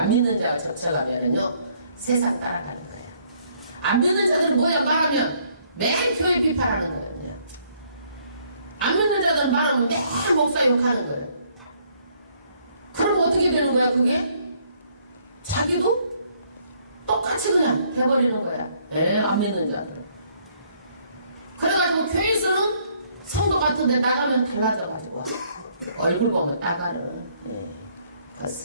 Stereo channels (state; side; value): inverted; both; correlation -0.66